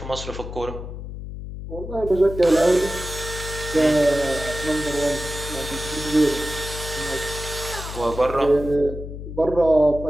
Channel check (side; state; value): left; noise; hum, 9 dB below the sound